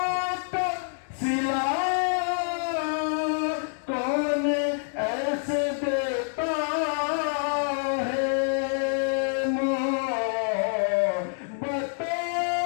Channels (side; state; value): right; silent; 60 dB below the other